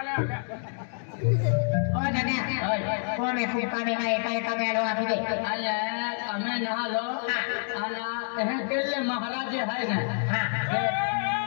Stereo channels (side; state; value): right; silent; 60 dB below the other